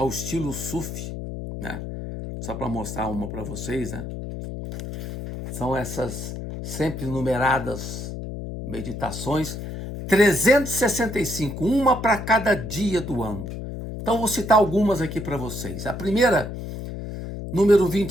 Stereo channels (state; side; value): noise; left; hum, 7 dB below the sound